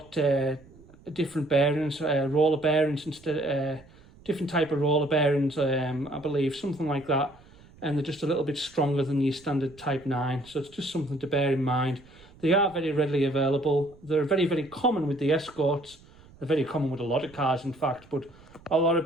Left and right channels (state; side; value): noise; right; rumble, 25 dB below the sound